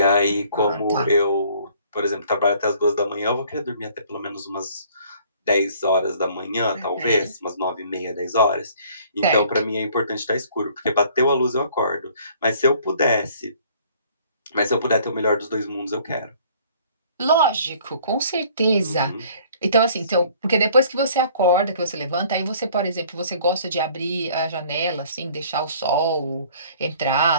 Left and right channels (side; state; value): both; inverted; correlation -0.56